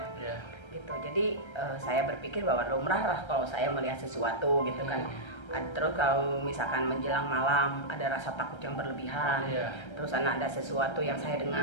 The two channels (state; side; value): late; right; 1.3 ms